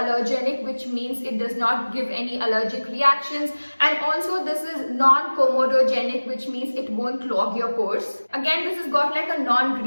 which means it does not give any allergic reactions, and also this is non-comedogenic, which means it won't clog your pores. Again, this has got like a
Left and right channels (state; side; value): inverted; both; correlation -1.00